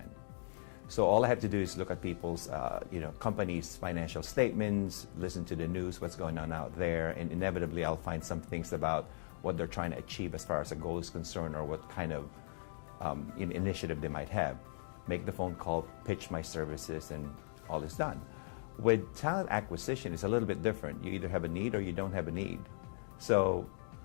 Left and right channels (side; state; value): right; silent; digital silence